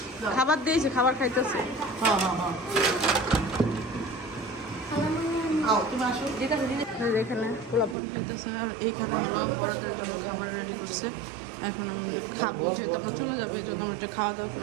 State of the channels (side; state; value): left; drops out; at 8.0 s